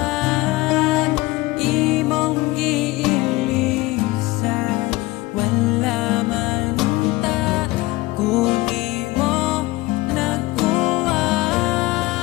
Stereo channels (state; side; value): quieter; right; 20.4 dB